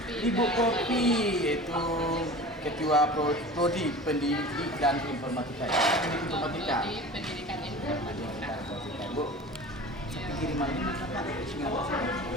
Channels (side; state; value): both; normal; correlation 0.37